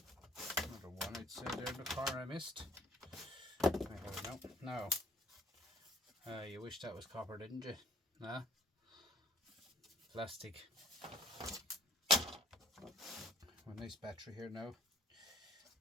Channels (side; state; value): both; normal; correlation 0.57